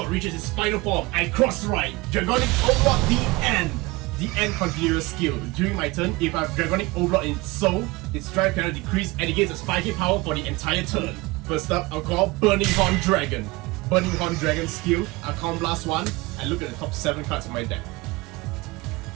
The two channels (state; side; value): quieter; left; 22.7 dB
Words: reaches its final form. I cross right. Dragonic Overlord D-End. D-End continuous skill. During my turn, if I have Dragonic Overlord in its soul, its drive cannot decrease and it gains a spiky power for the entire turn. First up, I'll call Burning Horn Dragon. Burning Horn Dragon skill. I'll Counter Blast 1 and look at the top 7 cards of my deck.